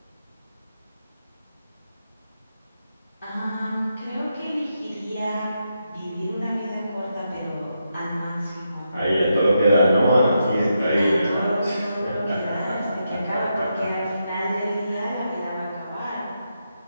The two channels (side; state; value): both; inverted; correlation -0.83